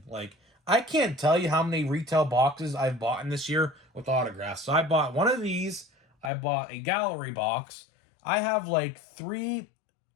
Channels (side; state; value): right; drops out; at 6.3 s